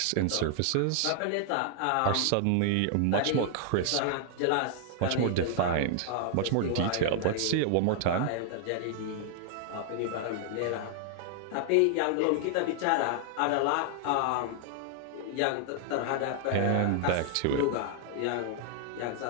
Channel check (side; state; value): both; different; correlation 0.00